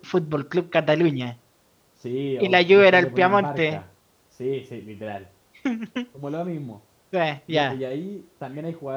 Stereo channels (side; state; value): both; identical; correlation 1.00